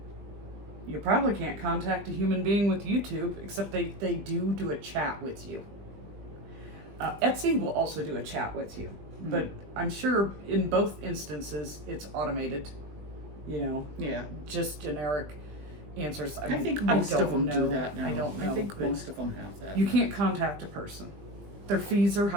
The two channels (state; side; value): late; left; 20 ms